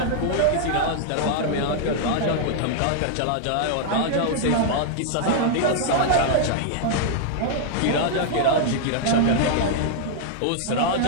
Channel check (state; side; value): different; both; correlation -0.01